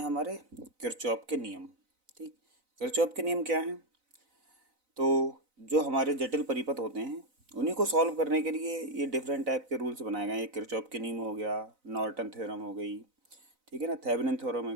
हमारे किरचॉफ के नियम। ठीक, किरचॉफ के नियम क्या हैं? तो जो हमारे जटिल परिपथ होते हैं उन्हीं को सॉल्व करने के लिए ये डिफरेंट टाइप के रूल्स बनाए गए हैं। ये किरचॉफ के नियम हो गया, नॉर्टन थ्योरम हो गई, ठीक है ना, थेवेनिन थ्योरम हो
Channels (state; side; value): late; left; 4.0 ms